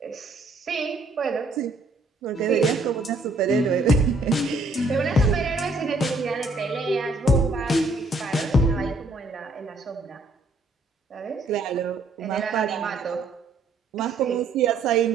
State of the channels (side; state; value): left; quieter; 3.0 dB